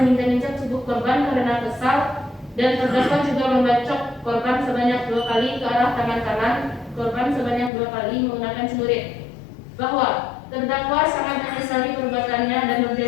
menginjak-injak tubuh korban karena kesal, dan terdakwa juga membacok korban sebanyak 2 kali ke arah tangan kanan korban sebanyak 2 kali menggunakan celurit. Bahwa terdakwa sangat menyesali perbuatannya dan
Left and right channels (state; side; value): drops out; right; at 7.7 s